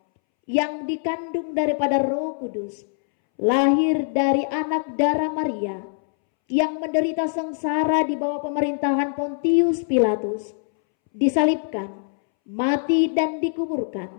yang dikandung daripada Roh Kudus, lahir dari anak darah Maria, yang menderita sengsara di bawah pemerintahan Pontius Pilatus, disalibkan, mati dan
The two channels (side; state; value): right; silent; 63 dB below the other